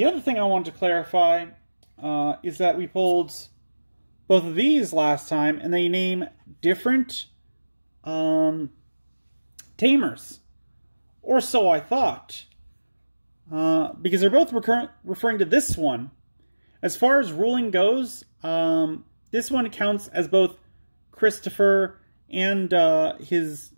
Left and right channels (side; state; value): both; inverted; correlation -1.00